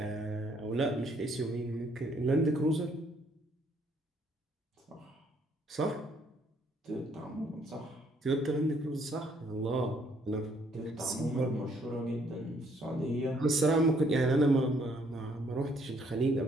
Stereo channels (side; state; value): both; normal; correlation 0.66